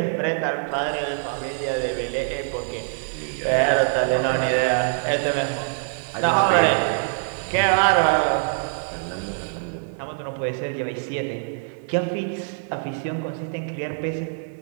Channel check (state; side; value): silent; left; 63 dB below the other